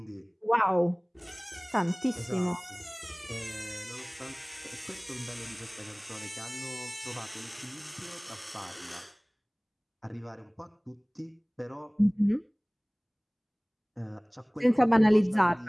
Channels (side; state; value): both; identical; correlation 1.00